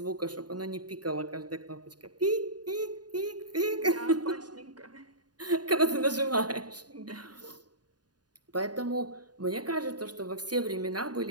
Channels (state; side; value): late; left; 0.69 ms